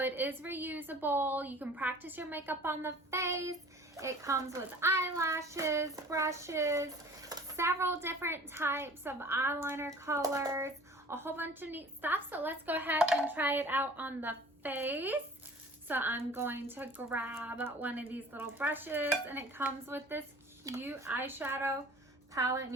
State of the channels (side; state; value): both; normal; correlation 0.46